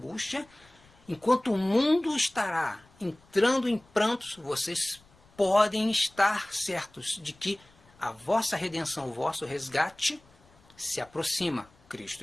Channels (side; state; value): left; noise; rumble, 29 dB below the sound